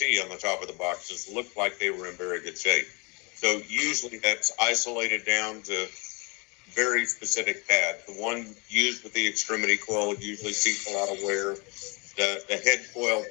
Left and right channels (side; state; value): right; quieter; 29.9 dB